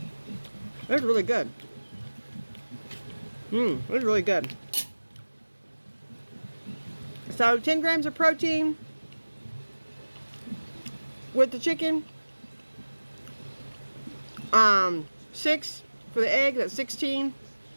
It's really good. It's really good. So 10 grams of protein with the chicken. 6 for the egg, that's 16.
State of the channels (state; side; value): inverted; both; correlation -1.00